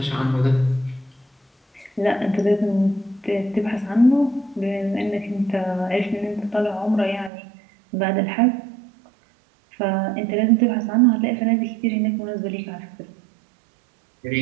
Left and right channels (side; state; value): left; drops out; at 7.3 s